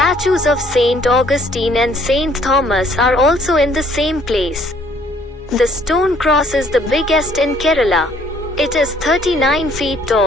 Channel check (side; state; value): both; normal; correlation 0.62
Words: of Saint Augustine and Saint Thomas are also in the same place. The stone cross is the biggest in Kerala. It is 39 feet